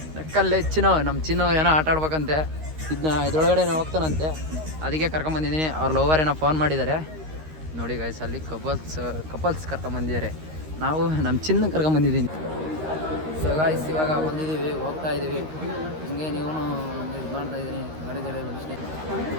ನಕ್ಕಲ್ಲೇ ಚಿನ್ನು. ನಮ್ಮ ಚಿನ್ನು ಏನೋ ಆಟ ಆಡ್ಬೇಕಂತೆ. ಇದ್ರೊಳಗಡೆ ಹೋಗ್ತಾನಂತೆ, ಅದಕ್ಕೆ ಕರ್ಕೊಂಬಂದಿದ್ದೀನಿ. ಅವ್ರ ಲವರ್ ಏನೋ ಫೋನ್ ಮಾಡಿದ್ದಾರೆ ನೋಡಿ ಗಾಯ್ಸ್. ಅಲ್ಲಿ ಕಪಲ್ಸ್ ಕರ್ಕೊಂಬಂದಿದ್ದಾರೆ. ನಾವು ನಮ್ಮ ಚಿನ್ನ ಕರ್ಕೊಂಬಂದಿದ್ದೀನಿ. ಸೊ ಗಾಯ್ಸ್ ಇವಾಗ ಬಂದಿದ್ದೀವಿ, ಹೋಗ್ತಾ ಇದ್ದೀವಿ. ಹಿಂಗೆ ನೀವು ಇದು ಮಾಡ್ತಾ ಇದ್ದೀನಿ ಗಾಡಿ ಬಿಡಿಸ್ತೀನಿ.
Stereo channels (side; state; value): left; late; 13 ms